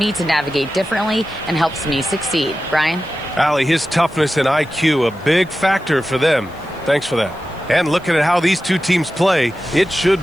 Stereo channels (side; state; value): left; noise; hiss, 29 dB below the sound